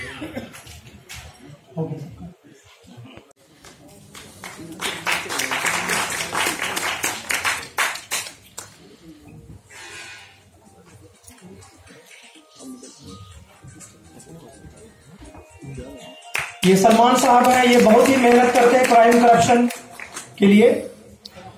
ये सलमान साहब हैं, ये बहुत ही मेहनत करते हैं क्राइम करप्शन के लिए।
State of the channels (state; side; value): identical; both; correlation 1.00